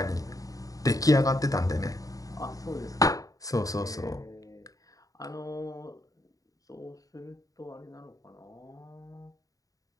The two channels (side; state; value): right; late; 0.17 ms